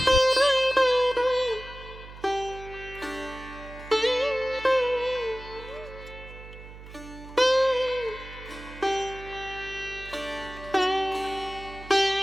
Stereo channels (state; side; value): noise; right; hum, 16 dB below the sound